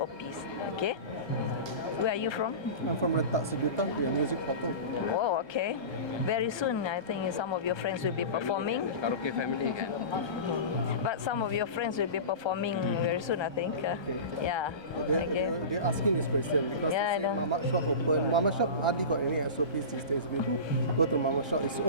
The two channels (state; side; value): late; right; 1.3 ms